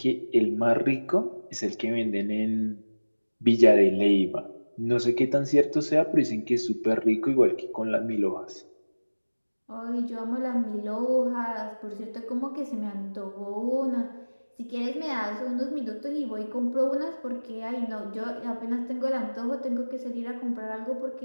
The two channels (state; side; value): inverted; both; correlation -1.00